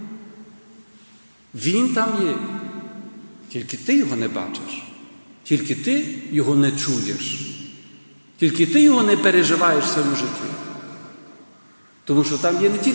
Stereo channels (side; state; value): both; inverted; correlation -1.00